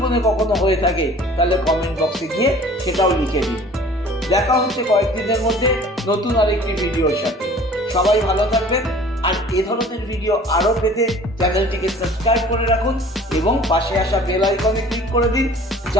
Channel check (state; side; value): normal; both; correlation 0.48